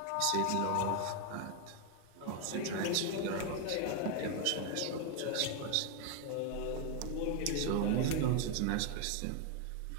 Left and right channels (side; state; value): both; different; correlation 0.01